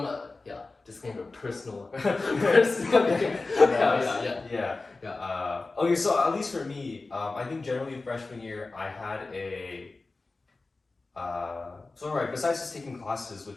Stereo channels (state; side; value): quieter; right; 3.5 dB